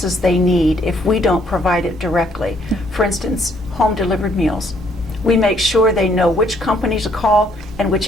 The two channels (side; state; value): both; normal; correlation 0.67